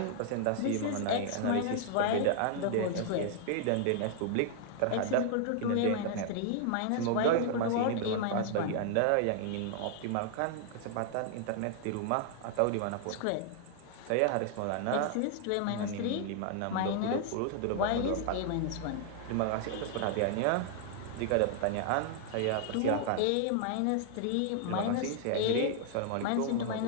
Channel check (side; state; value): both; different; correlation 0.00